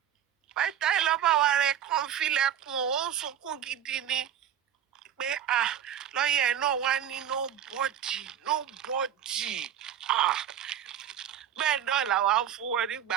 Python lọ́ba wa rẹ̀ kàn filẹ̀kùn ó ń sunkún gidi ni pé lọ́yẹ̀ náà wá ní nobody. Bẹ́ẹ̀ náà làwa ń fún wọn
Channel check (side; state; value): left; quieter; 9.8 dB